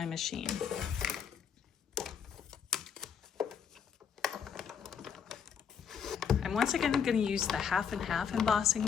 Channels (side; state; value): right; quieter; 7.3 dB